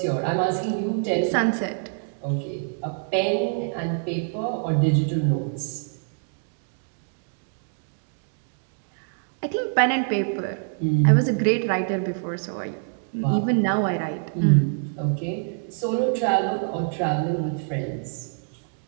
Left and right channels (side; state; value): left; silent; digital silence